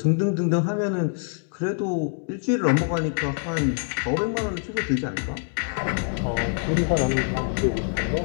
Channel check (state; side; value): silent; right; digital silence